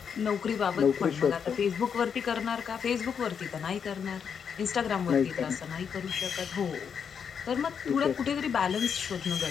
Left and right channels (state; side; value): quieter; right; 7.0 dB